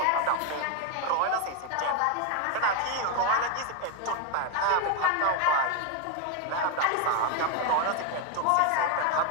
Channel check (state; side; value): different; both; correlation 0.01